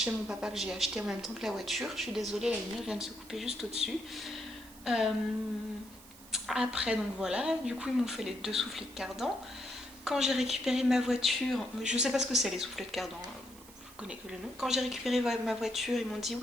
chez mon papa que j'ai acheté en même temps que la voiture. Je suis désolée, la lumière vient de se couper juste au-dessus. Après, donc voilà, du coup, ils m'ont fait les 2 soufflets de cardan. Quand j'ai récupéré ma voiture, je sais pas ce que c'est les soufflets de cardan. connais que le nom. Quand j'ai récupéré ma voiture, ils m'ont dit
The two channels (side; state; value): right; noise; hiss, 21 dB below the sound